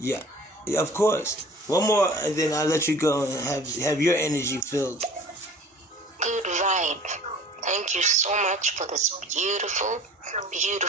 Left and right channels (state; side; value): normal; both; correlation 0.46